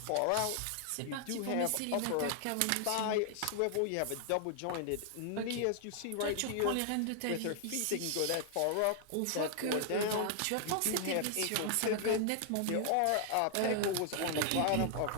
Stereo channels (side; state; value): both; different; correlation 0.00